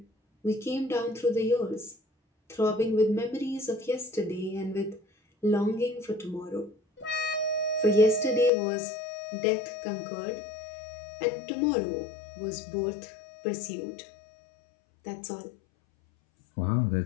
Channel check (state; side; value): drops out; right; at 8.5 s